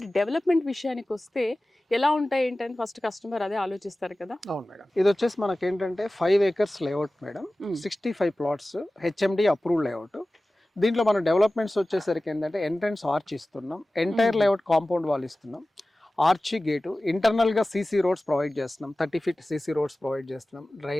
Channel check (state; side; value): normal; both; correlation 0.97